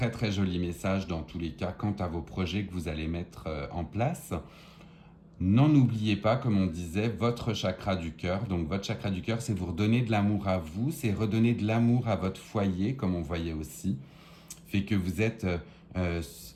très joli message dans tous les cas quant à vos projets que vous allez mettre en place. N'en oubliez pas, comme on disait, votre chakra du cœur. Donc votre chakra du cœur, c'est vous redonner de l'amour à vous, c'est redonner de l'amour à votre foyer, comme on voyait aussi. Fait que vous êtes...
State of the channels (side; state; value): both; identical; correlation 1.00